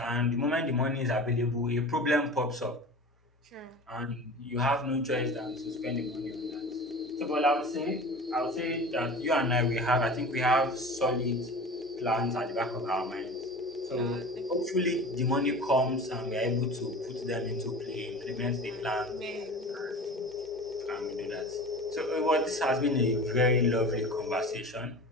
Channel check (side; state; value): both; normal; correlation 0.36